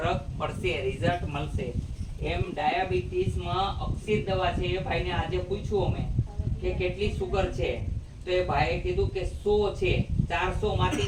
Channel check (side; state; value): both; identical; correlation 1.00